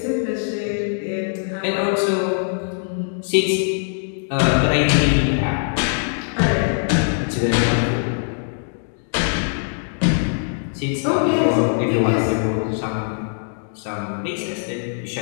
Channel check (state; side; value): silent; right; digital silence